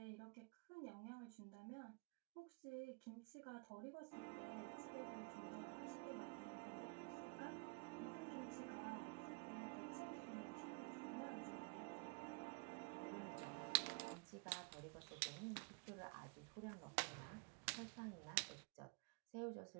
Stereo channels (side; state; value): left; quieter; 32.0 dB